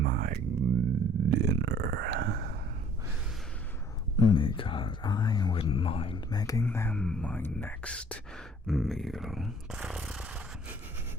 dinner, because I wouldn't mind making them my next meal.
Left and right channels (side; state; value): both; normal; correlation 0.57